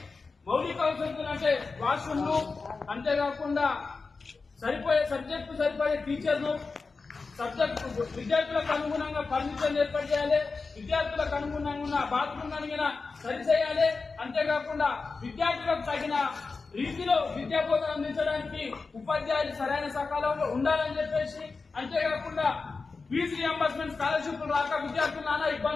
మౌలిక వసతులు అంటే వాష్రూమ్లు, అంతేకాకుండా సబ్జెక్టు సరిపోయే టీచర్లు, సబ్జెక్టు విద్యార్థులకు అనుగుణంగా ఫర్నిచర్ ఏర్పాటు చేయాలి, విద్యార్థులకు అనుగుణంగా బాత్రూమ్ అడిగిన సరిచేయాలి, అంతేకాకుండా విద్యార్థులకు తగిన రీతిలో విద్యా బోధన అందించడానికి ఉపాధ్యాయులు సరైన సకాలంలో ఉండాలని చెప్పేసి, అంతేకాకుండా ఫీజు రియంబర్స్మెంట్ స్కాలర్షిప్లు రాక విద్యార్థులు నానా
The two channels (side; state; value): right; quieter; 4.3 dB